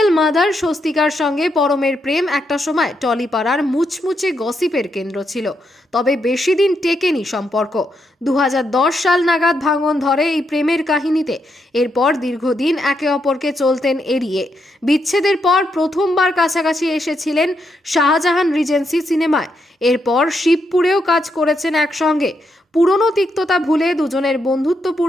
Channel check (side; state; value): both; normal; correlation 0.80